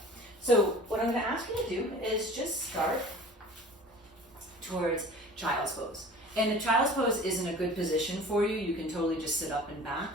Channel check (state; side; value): normal; both; correlation 0.43